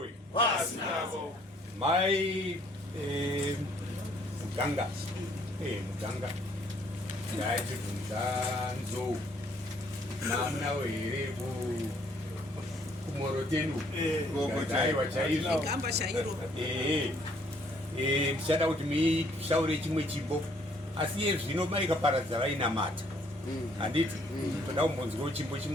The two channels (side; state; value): both; normal; correlation 0.64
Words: Pasinavo. Mai Muganga ndaiti kunzanzo namna were kumorotenu ndaiwa chaizvo ndichada kuti mishaure chimwe chimbo asi iye zvino maikaparadza vainamata handiti toda kumbonzwawo chimbo